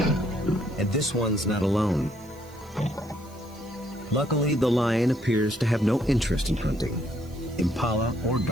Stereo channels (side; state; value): right; noise; hiss, 25 dB below the sound